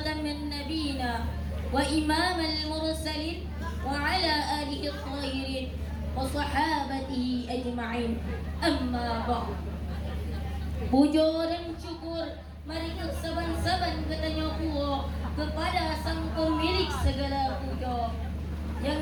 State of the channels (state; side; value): identical; both; correlation 1.00